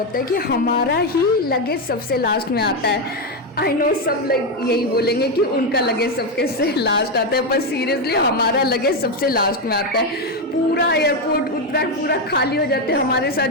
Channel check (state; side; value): normal; both; correlation 0.07